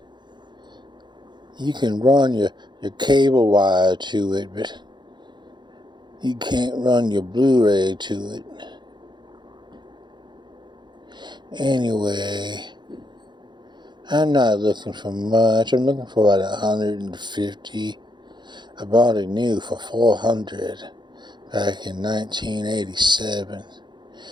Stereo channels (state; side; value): late; left; 0.22 ms